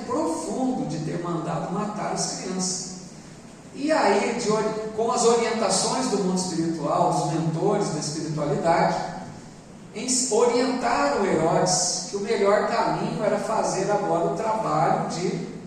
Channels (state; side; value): identical; both; correlation 1.00